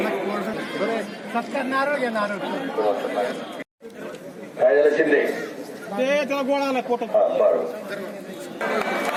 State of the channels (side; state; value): both; identical; correlation 1.00